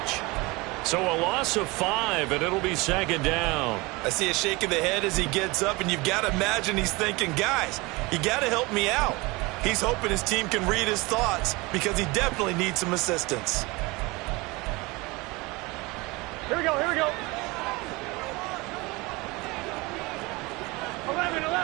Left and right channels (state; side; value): quieter; left; 23.9 dB